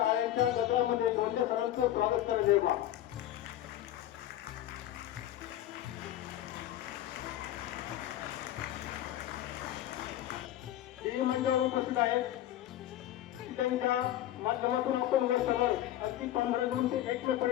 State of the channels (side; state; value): right; quieter; 12.9 dB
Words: गजरामध्ये लोंढे सरांचं स्वागत करायचे बा. मंडळावर उपस्थित आहेत त्यांच्या माध्यमातून आपण वर सगळं अगदी 15 जून ते 1 मे